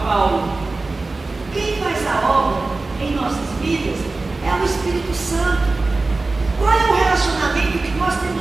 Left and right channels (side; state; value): left; quieter; 3.4 dB